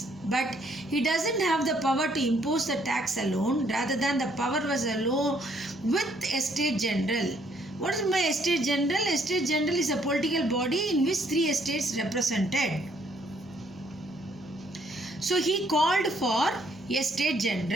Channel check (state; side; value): noise; right; hum, 29 dB below the sound